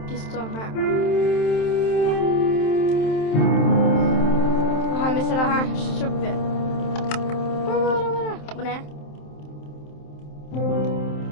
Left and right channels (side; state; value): right; late; 27 ms